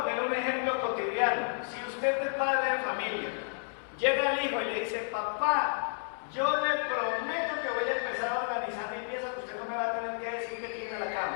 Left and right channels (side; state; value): right; silent; 57 dB below the other